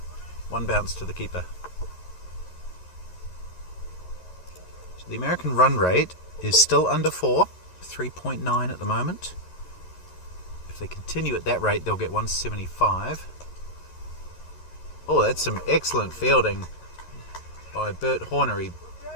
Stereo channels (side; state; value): right; late; 11 ms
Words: 1 bounce to the keeper. So the American run rate is still under 4, 3.9 at the moment. If they continue at that rate, they'll get 175. Oh, that's some excellent fielding by Bert Horner. He